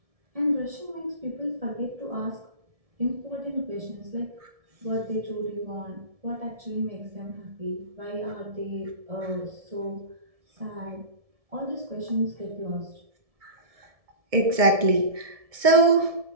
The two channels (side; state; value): left; late; 1.7 ms